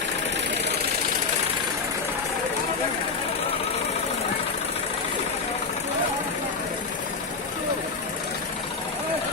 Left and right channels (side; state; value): right; quieter; 4.6 dB